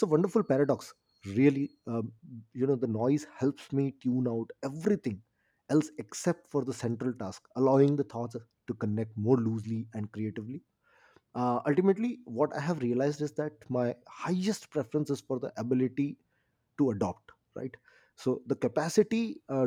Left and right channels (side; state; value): both; identical; correlation 1.00